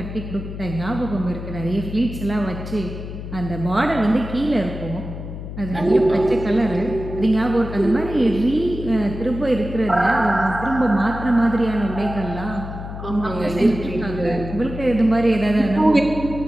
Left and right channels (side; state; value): left; noise; hum, 9 dB below the sound